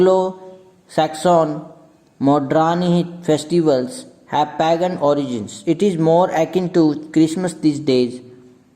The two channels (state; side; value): identical; both; correlation 1.00